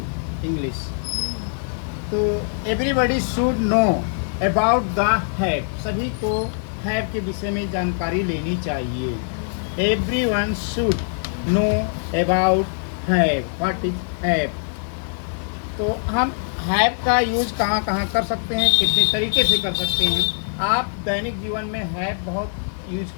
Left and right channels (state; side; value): silent; right; 64 dB below the other